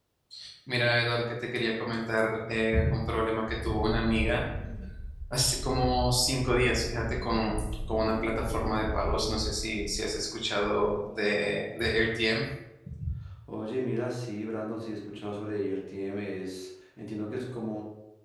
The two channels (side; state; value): both; identical; correlation 1.00